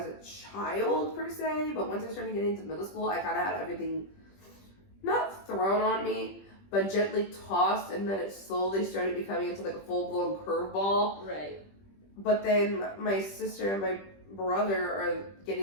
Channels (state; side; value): late; right; 20 ms